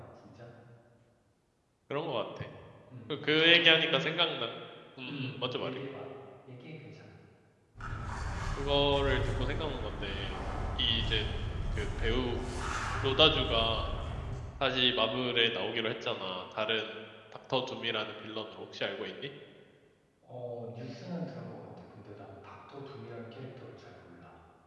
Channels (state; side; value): identical; both; correlation 1.00